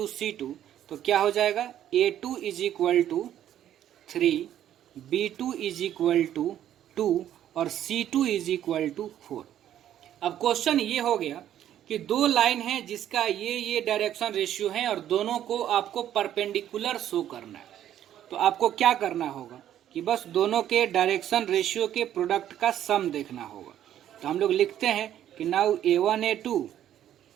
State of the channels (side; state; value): left; quieter; 11.2 dB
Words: C2 तो क्या हो जाएगा, A2 = 3, B2 = 2 और C2 = 4। अब क्वेश्चन ये हो गया कि दो लाइन है जिसका ये डायरेक्शन रेशियो है और दोनों को आपको परपेंडिकुलर शो करना है। तो आपको क्या करना होगा, कि बस दोनों के डायरेक्शन रेशियो के प्रोडक्ट का सम देखना होगा। तो हम लोग लिखते हैं कि now A1A2